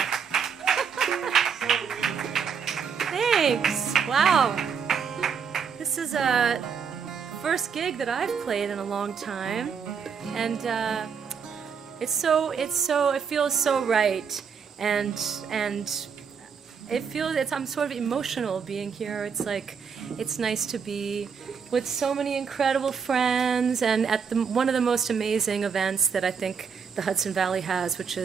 Thanks. Wow. This is a first gig that I've played in a long time, and it feels so right, and I'm sort of emotional being here. It's like, it's nice to be with so many incredible friends, and at one of the most amazing events that I think the Hudson Valley has, which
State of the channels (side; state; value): left; quieter; 6.4 dB